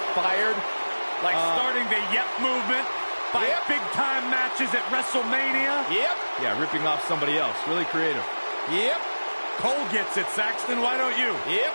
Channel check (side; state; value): both; inverted; correlation -1.00